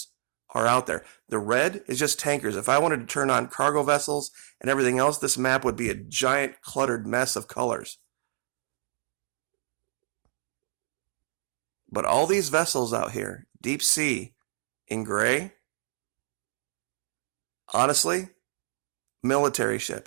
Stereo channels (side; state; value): left; silent; digital silence